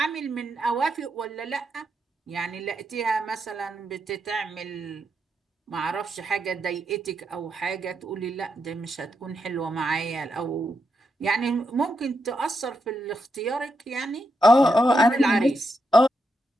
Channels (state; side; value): normal; both; correlation 0.83